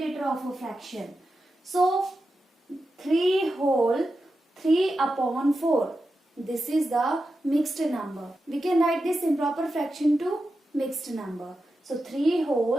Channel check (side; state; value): both; normal; correlation 0.90